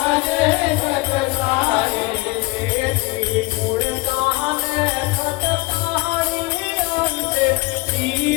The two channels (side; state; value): right; quieter; 23.5 dB